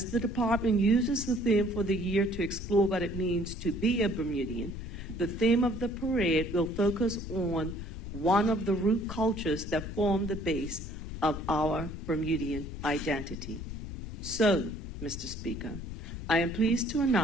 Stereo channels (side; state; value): left; noise; rumble, 9 dB below the sound